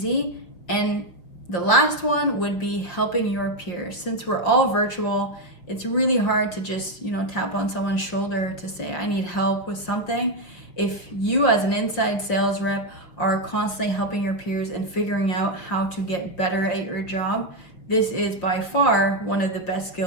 And the last one would be helping your peers. Since we're all virtual, it's really hard to just, tap on someone's shoulder to say, I need help with something. If you as an inside sales rep are constantly helping your peers and figuring out how to get better at your job, this is by far one of the best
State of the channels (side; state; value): right; late; 6.0 ms